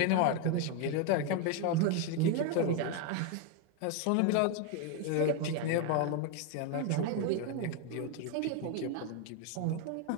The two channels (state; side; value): different; both; correlation 0.01